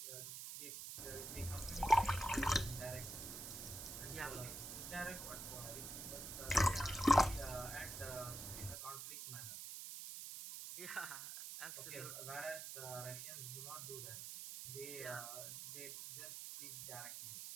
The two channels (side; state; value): right; noise; hiss, 7 dB below the sound